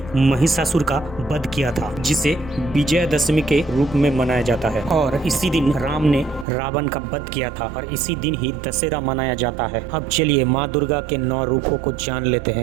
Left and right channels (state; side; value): drops out; left; at 6.5 s